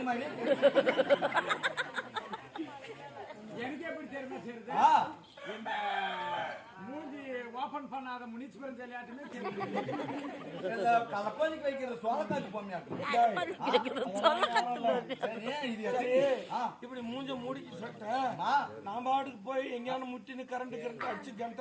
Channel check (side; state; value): both; identical; correlation 1.00